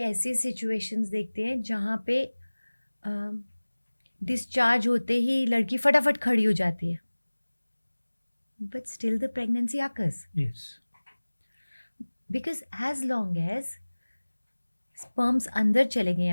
सिचुएशंस देखते हैं जहाँ पे डिस्चार्ज होते ही लड़की फटाफट खड़ी हो जाती है, but still the pregnancy occurs yes, because as long as sperms अंदर चले गए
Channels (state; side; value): inverted; both; correlation -1.00